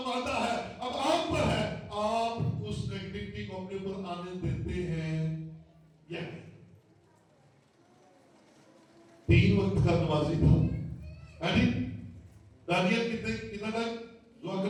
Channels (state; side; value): identical; both; correlation 1.00